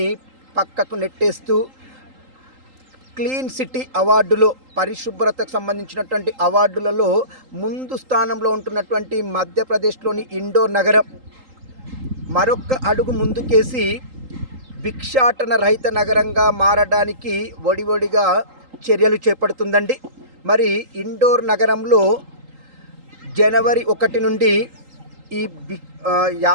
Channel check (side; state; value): left; late; 3.8 ms